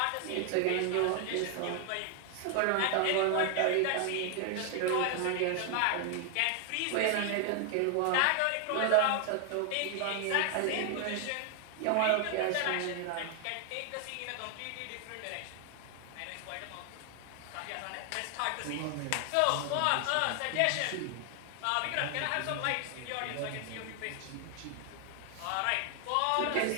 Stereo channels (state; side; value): different; both; correlation 0.00